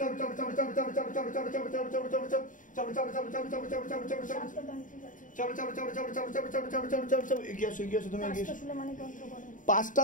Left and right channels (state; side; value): late; right; 0.38 ms